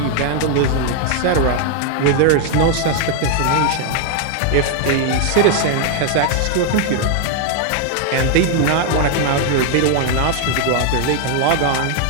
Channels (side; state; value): both; different; correlation 0.00